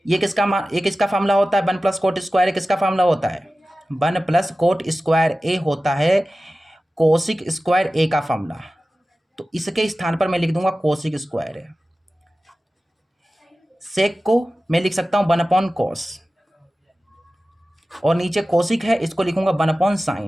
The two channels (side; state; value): both; normal; correlation 0.95